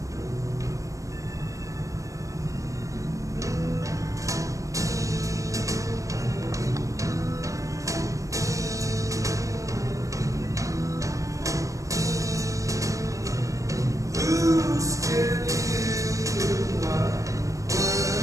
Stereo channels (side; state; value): left; late; 0.16 ms